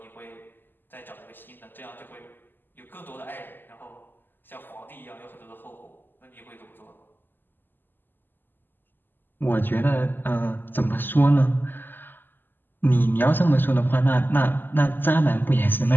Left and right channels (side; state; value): right; late; 0.094 ms